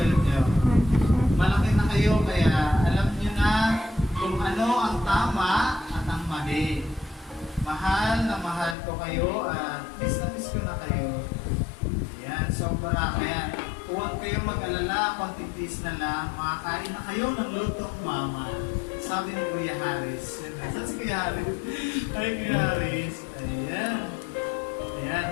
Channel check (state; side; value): drops out; right; at 8.8 s